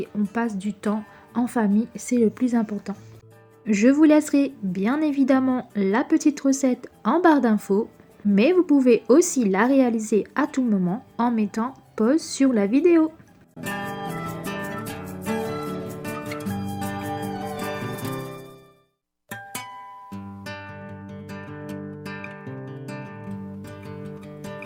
on passe du temps en famille, c'est le plus important. Je vous laisserai bien évidemment la petite recette en barre d'infos, mais vous pouvez aussi la réaliser à tout moment en mettant pause sur la vidéo.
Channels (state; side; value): identical; both; correlation 1.00